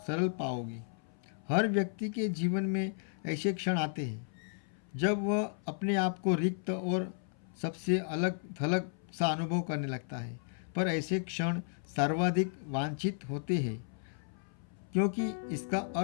पाओगे। हर व्यक्ति के जीवन में ऐसे क्षण आते हैं जब वह अपने आप को रिक्त और सबसे अलग थलग सा अनुभव करने लगता है। पर ऐसे क्षण सर्वाधिक वांछित होते हैं, क्योंकि इसका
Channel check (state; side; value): silent; right; 55 dB below the other